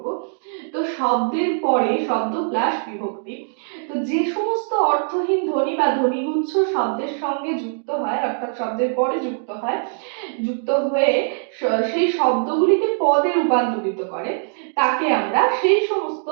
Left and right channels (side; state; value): left; silent; digital silence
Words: তো শব্দের পরে শব্দ প্লাস বিভক্তি, তো যে সমস্ত অর্থহীন ধ্বনি বা ধ্বনিগুচ্ছ শব্দের সঙ্গে যুক্ত হয়, অর্থাৎ শব্দের পরে যুক্ত হয়ে সেই শব্দগুলিকে পদে রূপান্তরিত করে, তাকে আমরা সেই সমস্ত